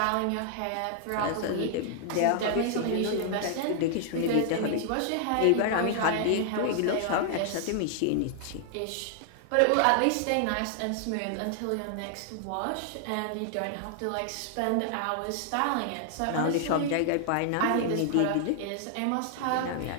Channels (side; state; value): both; different; correlation 0.00